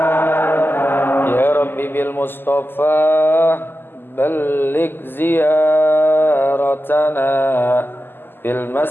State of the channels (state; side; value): late; right; 0.097 ms